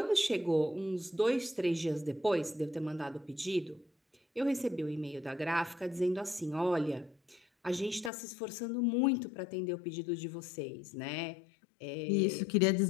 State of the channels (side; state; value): right; drops out; at 8.1 s